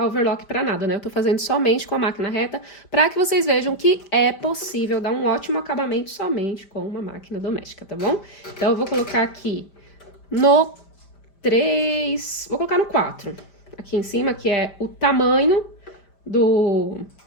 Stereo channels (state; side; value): late; right; 5.0 ms